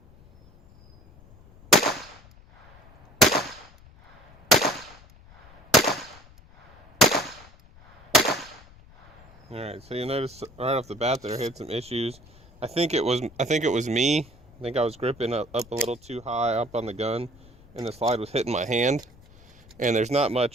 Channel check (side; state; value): left; noise; rumble, 24 dB below the sound